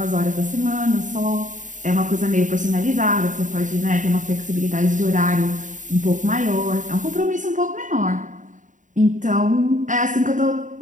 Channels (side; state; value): left; late; 0.37 ms